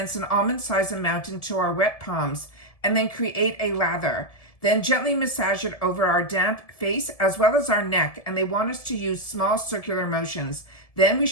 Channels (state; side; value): late; right; 1.7 ms